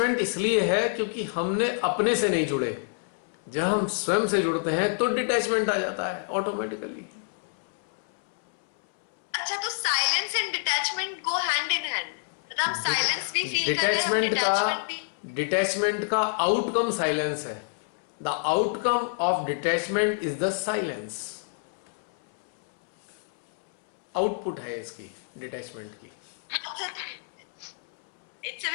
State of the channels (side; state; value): right; silent; 60 dB below the other